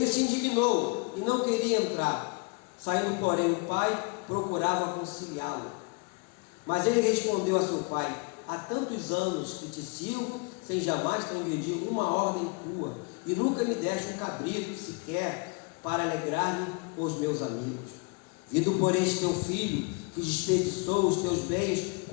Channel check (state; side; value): quieter; right; 31.6 dB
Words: se indignou e não queria entrar. Saindo, porém, o pai procurava conciliá-lo. Mas ele respondeu a seu pai: há tantos anos que te sirvo, sem jamais transgredir uma ordem tua, e nunca me deste um cabrito sequer para alegrar-me com os meus amigos. Vindo, porém, este teu filho, que desperdiçou os teus bens